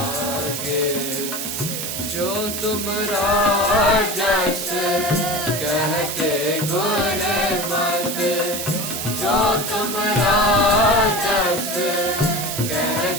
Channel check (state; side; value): noise; right; hiss, 4 dB below the sound